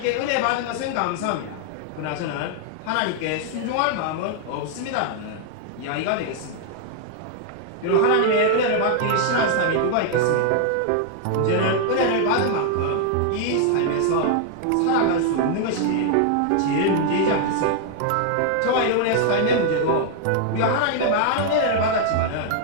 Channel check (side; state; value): both; different; correlation 0.00